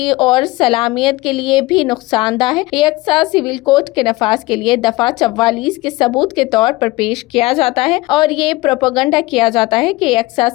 اور سالمیت کے لیے بھی نقصان دہ ہے۔ یکساں سول کوڈ کے نفاذ کے لیے دفعہ 44 کے ثبوت کے طور پر پیش کیا جاتا ہے اور یہ پروپیگنڈا کیا جاتا ہے کہ یکساں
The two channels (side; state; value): right; quieter; 20.6 dB